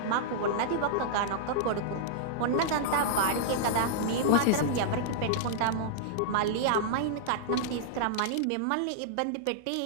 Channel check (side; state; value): both; different; correlation -0.02